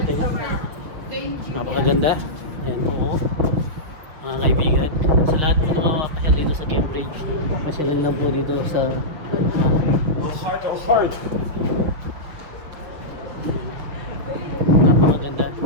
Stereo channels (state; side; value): late; left; 6.4 ms